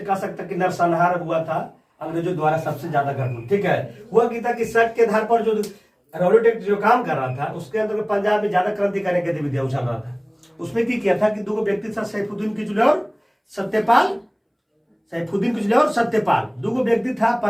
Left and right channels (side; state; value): both; identical; correlation 1.00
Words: कह सकता कि नरसंहार हुआ था अंग्रेजों द्वारा, सबसे ज्यादा घटना। ठीक है, हुआ कि था कि शक के आधार पर जो रॉलेट एक्ट जो काम कर रहा था उसके अंदर पंजाब में ज्यादा क्रांतिकारी गतिविधियां उछल रहा था। उसमें की किया था कि दो व्यक्ति था, सैफुद्दीन किचलू और सत्यपाल। दो व्यक्ति था